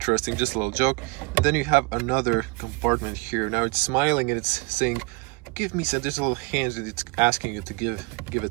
just a little joke. And then you have another compartment here. Now it's smiling and it's saying, give me some. There's a little hands and it's asking you to give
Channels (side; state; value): left; quieter; 26.4 dB